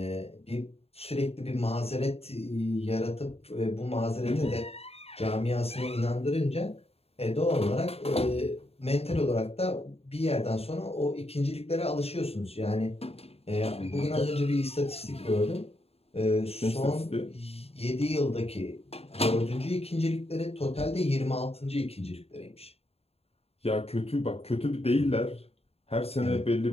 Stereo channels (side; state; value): right; late; 0.29 ms